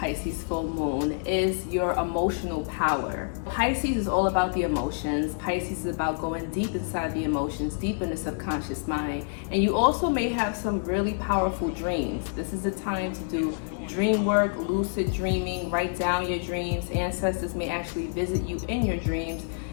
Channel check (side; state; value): right; silent; digital silence